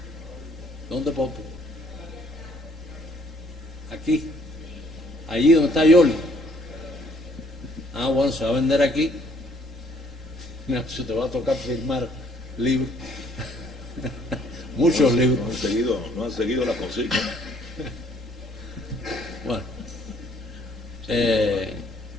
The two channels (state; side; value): normal; both; correlation 0.63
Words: ¿Dónde, Popo? Aquí, allí donde está Yoli. Ah, bueno, se va a vender aquí. Mira, se te va a tocar firmar libros. Muchos libros. No han seguido la consigna. Bueno.